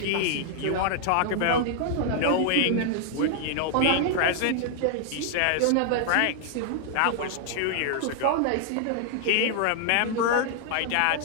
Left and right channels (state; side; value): different; both; correlation 0.00